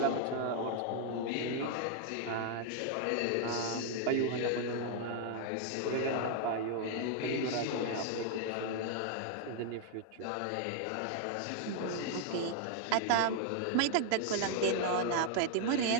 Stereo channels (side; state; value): both; different; correlation 0.00